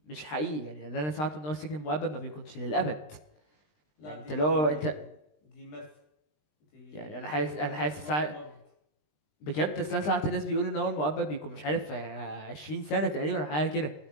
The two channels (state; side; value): late; right; 20 ms